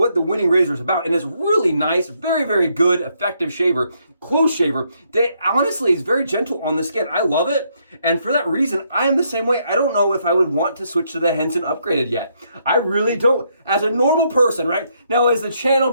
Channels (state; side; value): inverted; both; correlation -0.74